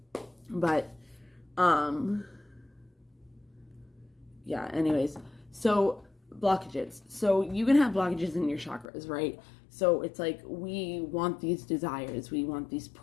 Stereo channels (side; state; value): right; drops out; at 8.8 s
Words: But, yeah, anyways, so blockages. So you can have blockages in your chakras, right? So it's like we want these desires, we want these